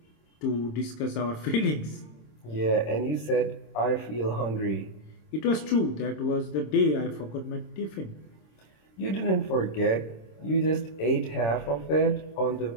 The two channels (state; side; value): late; right; 26 ms